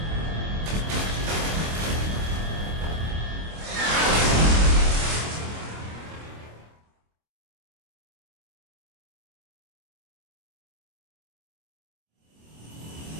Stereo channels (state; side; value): late; left; 26 ms